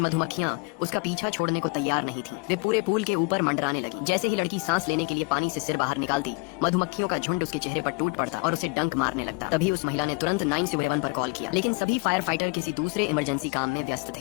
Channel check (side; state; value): right; quieter; 29.9 dB